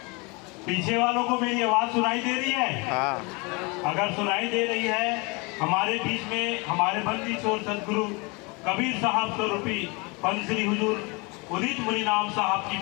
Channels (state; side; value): quieter; right; 28.4 dB